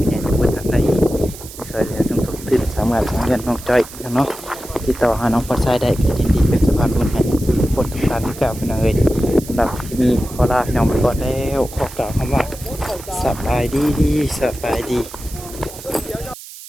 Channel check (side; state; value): right; noise; hiss, 15 dB below the sound